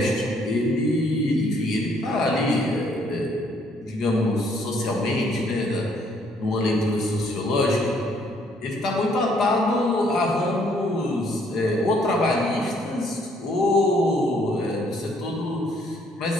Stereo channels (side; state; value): both; normal; correlation 0.66